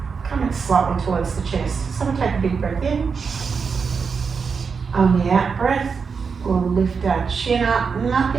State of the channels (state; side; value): quieter; left; 5.6 dB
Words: coming slightly towards the chest. So we'll take a big breath in. On the out breath, we'll lift our chin up.